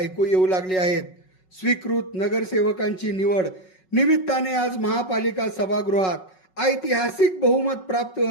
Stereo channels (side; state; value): right; late; 5.4 ms